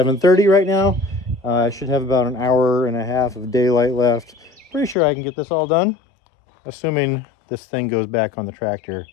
right now. I should have about an hour and a half of daylight left. Pretty sure I can get this all done, assuming this thing goes back on the tractor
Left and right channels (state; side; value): drops out; right; at 5.0 s